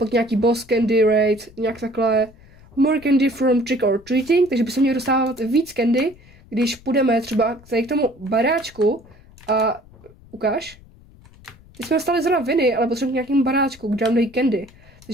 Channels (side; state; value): left; noise; rumble, 24 dB below the sound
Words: nějaký boss candy rate, nějak takhle. More candy from trick or treating, takže by se měli dostávat víc candy, když půjdeme třeba k tomu baráčku a ukáž. Teď jsme dostali zrovna viny, ale potřebujeme k nějakému baráčku, kde nám dají candy.